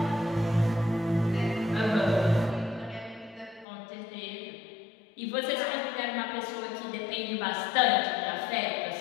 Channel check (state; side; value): drops out; right; at 3.7 s